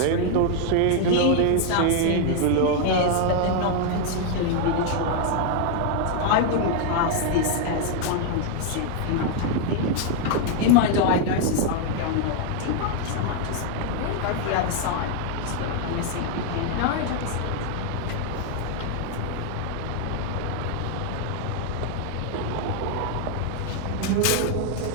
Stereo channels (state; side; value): different; both; correlation 0.00